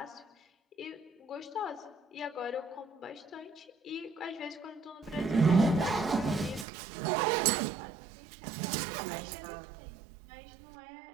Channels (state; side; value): drops out; left; at 6.7 s